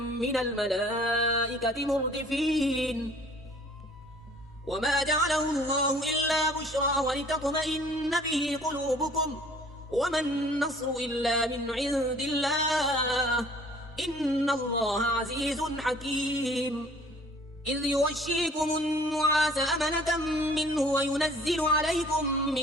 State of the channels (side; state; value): both; normal; correlation 0.53